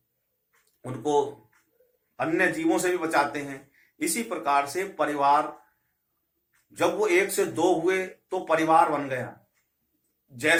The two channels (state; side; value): identical; both; correlation 1.00